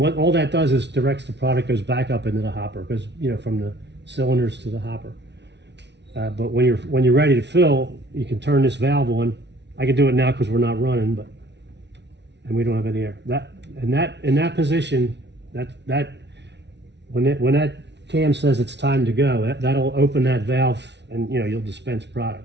all that does is directs the product goes back up into the hopper, because from the cylinders to the hopper. But when you're ready to fill, you can turn this valve on. I can do it now because we're not running, and we don't have any air. In that position, when that cam says it's time to go, that'll open that valve, and you'll dispense product.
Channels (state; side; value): late; left; 0.50 ms